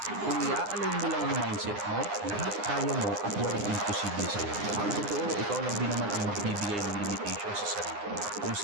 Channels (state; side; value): late; left; 9.8 ms